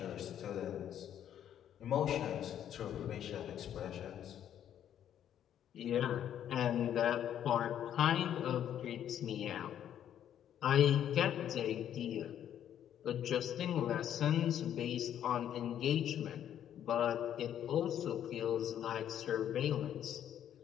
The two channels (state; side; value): quieter; right; 10.2 dB